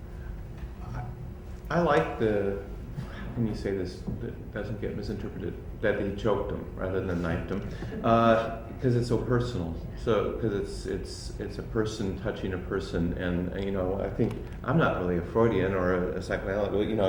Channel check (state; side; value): identical; both; correlation 1.00